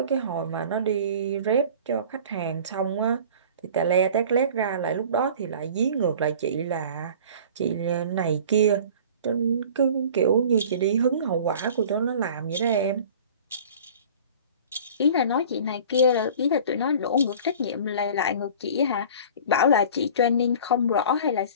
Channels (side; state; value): both; inverted; correlation -0.43